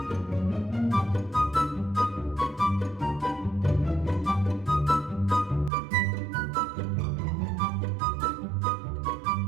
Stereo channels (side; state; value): left; drops out; at 5.7 s